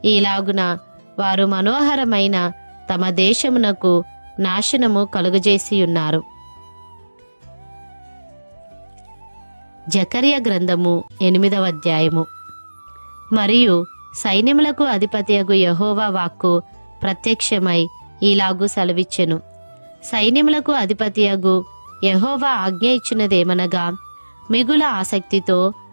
ఈలాగున వారు మనోహరమైన తమ దేశమునకు నాశనము కలుగజేసియున్నారు. జకర్యా గ్రంథము 8వ అధ్యాయము. మరియు సైన్యములకు అధిపతియగు యెహోవా వాక్కు ప్రత్యక్షమై ఈలాగు సెలవిచ్చెను. సైన్యములకు అధిపతియగు యెహోవా ఆజ్ఞ ఇచ్చినదేమనగా, మిగుల ఆసక్తితో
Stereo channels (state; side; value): inverted; both; correlation -1.00